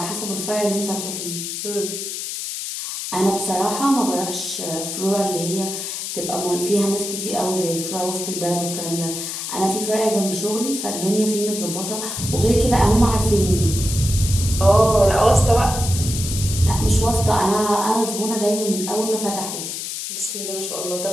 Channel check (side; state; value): left; noise; hiss, 5 dB below the sound